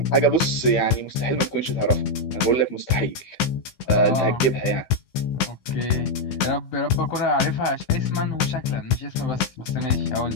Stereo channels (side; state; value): right; late; 15 ms